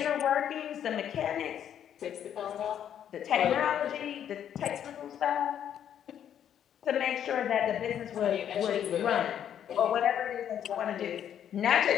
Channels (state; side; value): quieter; right; 9.6 dB